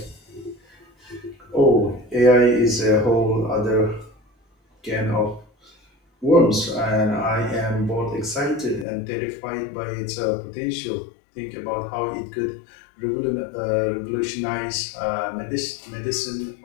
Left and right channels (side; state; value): right; drops out; at 8.8 s